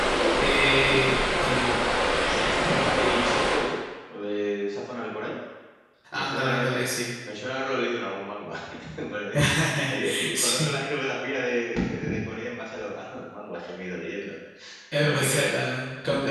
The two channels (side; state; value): both; identical; correlation 1.00